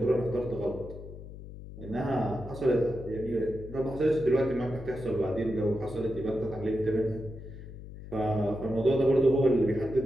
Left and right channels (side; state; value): left; noise; hum, 13 dB below the sound